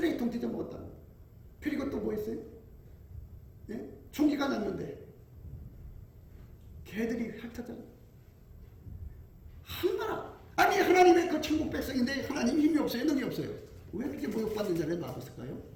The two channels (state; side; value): identical; both; correlation 1.00